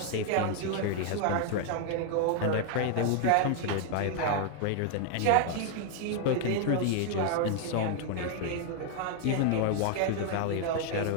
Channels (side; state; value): both; different; correlation 0.00